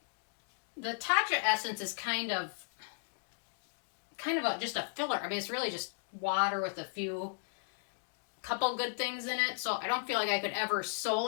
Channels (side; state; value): right; silent; digital silence